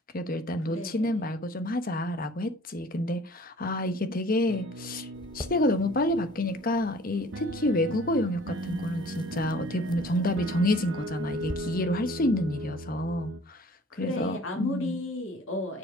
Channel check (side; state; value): both; normal; correlation 0.51